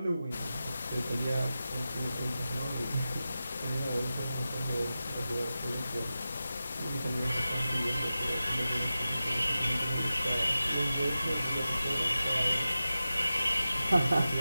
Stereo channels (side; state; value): both; inverted; correlation -0.93